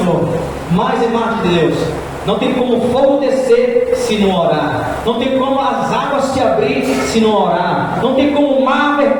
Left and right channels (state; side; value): identical; both; correlation 1.00